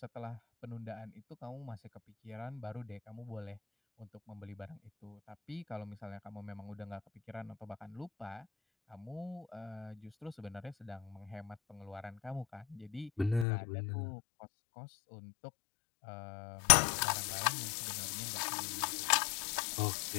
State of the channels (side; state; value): right; drops out; at 13.5 s